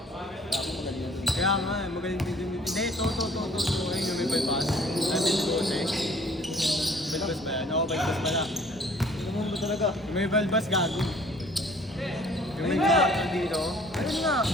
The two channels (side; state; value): both; normal; correlation 0.55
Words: Kaya nga, magaling din din. Hindi, to. Ayun yung may bypass. Sabi ni Jose. Bypass ba yan? Oo, bypass pala. Ano ba talaga? Yung may bypass gago. Yung may Ayun nga. bypass dito. Ayun nga!